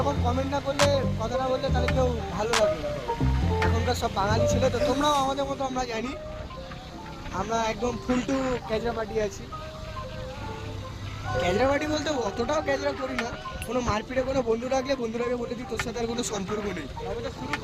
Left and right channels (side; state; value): both; identical; correlation 1.00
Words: কমেন্ট না করলে, কথা না বললে, তাহলে কেউ ভালো লাগবে না। এখনকার সব বাঙালি ছেলে তো, তোমরাও আমাদের মতো, আমরা জানি। আমরা একদম ফুল টু ক্যাজরা পার্টি আছি। ক্যাজরা পার্টি বলতে অতটাও ক্যাজরা করি না, কোনো মারপিটে কোনো বন্ধু রাখলে বন্ধুরাকে বলে দিই তোর সাথে আর কোনো সম্পর্ক নেই। তবে তো শুরু